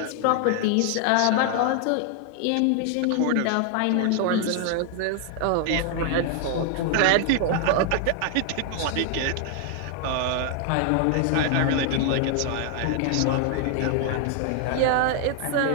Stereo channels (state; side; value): different; both; correlation 0.00